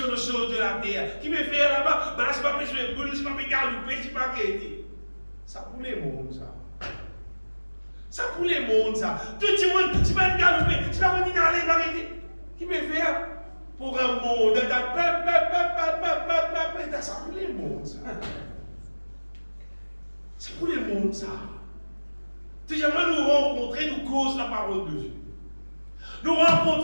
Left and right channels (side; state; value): both; inverted; correlation -1.00